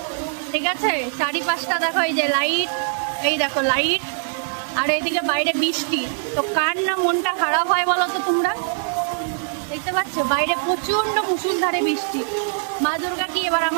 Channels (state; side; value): silent; left; digital silence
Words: ঠিক আছে? চারিপাশটা দেখো, এই যে লাইট, এই দেখো লাইট, আর এইদিকে বাইরে বৃষ্টি। তো কার না মনটা খারাপ হয় বলো তো? তোমরা দেখতে পাচ্ছ বাইরে প্রচন্ড মুষলধারে বৃষ্টি। মা দুর্গা কি এবার